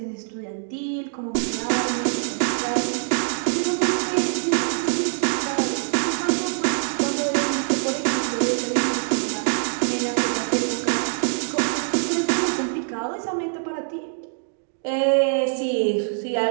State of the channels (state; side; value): silent; left; 63 dB below the other